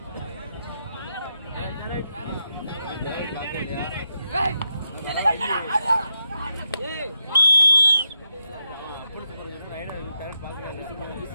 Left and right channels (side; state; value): both; inverted; correlation -0.85